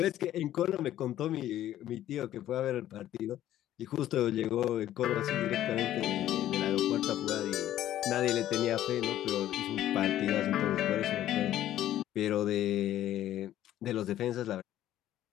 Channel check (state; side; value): quieter; right; 12.7 dB